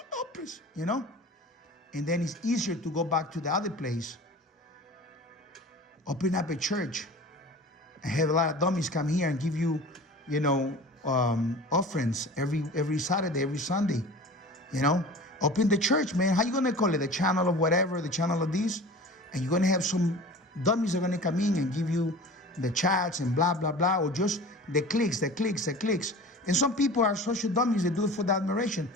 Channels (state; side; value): normal; both; correlation 0.38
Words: Lopez, you know? And then it's easier to go back to the other place. Open up a church and have a lot of dummies come here and give you, you know, offerings every Saturday, every Sunday, you know. Open the church, man. How you gonna call it? The channel of whatever, the channel of this, and you're gonna have some dummies that are gonna come in and give you the chats and blah blah blah, or just the clicks. And some people are social dummies that do it for the admiration.